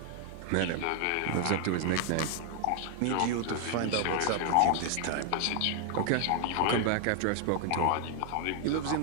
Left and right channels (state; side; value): different; both; correlation 0.00